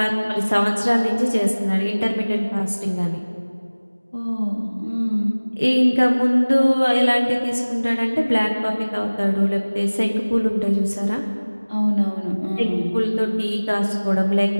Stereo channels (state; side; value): inverted; both; correlation -1.00